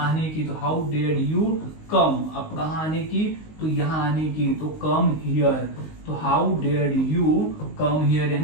की, तो हाउ डेयर्ड यू कम। अब कहाँ आने की, तो यहाँ आने की, तो कम हियर। तो how dared you come here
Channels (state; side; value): late; right; 19 ms